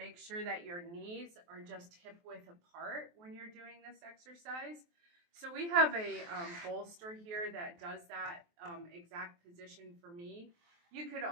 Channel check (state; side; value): late; left; 23 ms